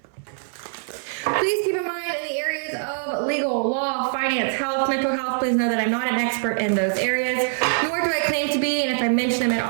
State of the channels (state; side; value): silent; left; 63 dB below the other